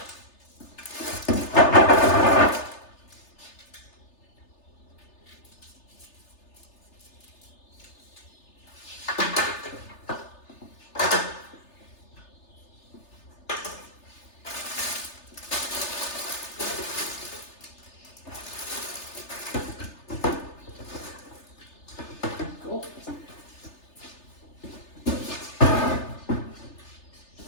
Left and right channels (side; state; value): right; late; 3.3 ms